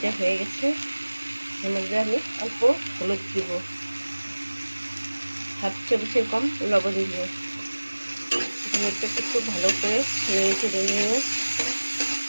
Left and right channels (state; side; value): inverted; both; correlation -1.00